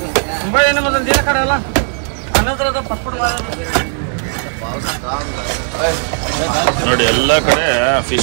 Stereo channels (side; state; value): left; silent; digital silence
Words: मुंबई देना मतलब दिया करायला ಅನ್ನದ್ರೆ ಅದು ಪಸ್ಪುಡ್ ನೋಡಿ ಎಲ್ಲ ಕಡೆ